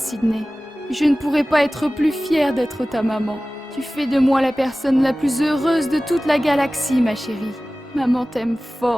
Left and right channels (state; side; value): normal; both; correlation 0.97